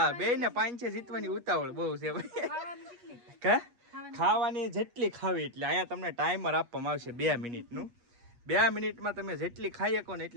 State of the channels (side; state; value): left; late; 8.3 ms